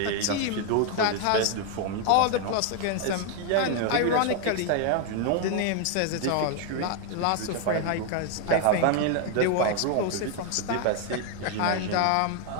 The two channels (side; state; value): both; different; correlation 0.00